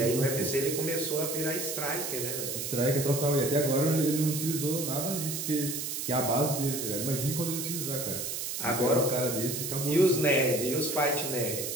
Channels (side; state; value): right; noise; hiss, 4 dB below the sound